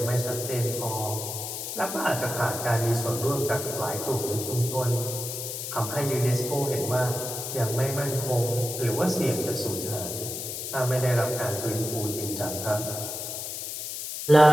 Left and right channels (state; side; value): noise; left; hiss, 6 dB below the sound